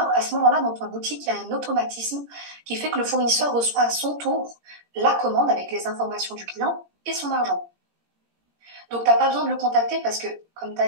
dans ta boutique, il y a un automatisme qui fait que le fournisseur reçoit à son tour la commande avec les informations du client et son argent. Donc, t'as pas besoin de le contacter parce que, comme tu as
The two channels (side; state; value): left; late; 17 ms